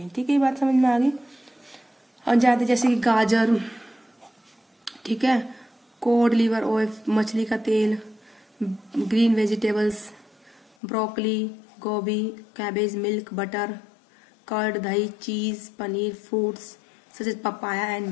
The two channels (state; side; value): drops out; right; at 10.7 s